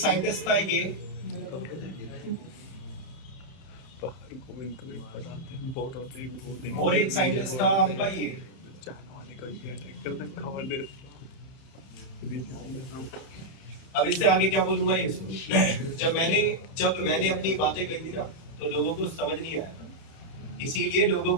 था, ये और एक साइंटिस्ट था आपका ये। अब इससे आगे क्या बोलूंगा ये सुनो। जब मैंने अपनी बातें कही थी ना, तो लोगों को समझ नहीं आया, इसीलिए लोगों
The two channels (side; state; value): right; late; 31 ms